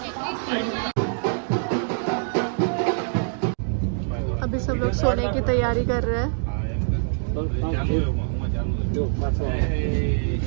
अभी सब लोग सोने की तैयारी कर रहे हैं।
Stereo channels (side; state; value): left; silent; digital silence